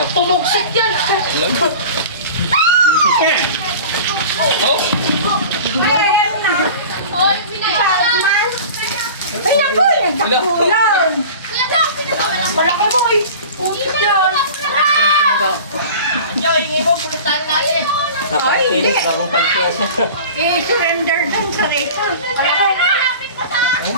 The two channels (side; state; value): both; inverted; correlation -0.38